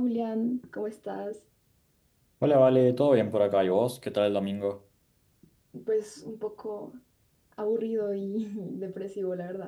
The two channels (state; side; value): identical; both; correlation 1.00